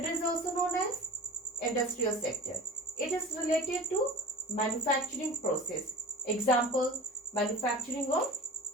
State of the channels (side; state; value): both; normal; correlation 0.34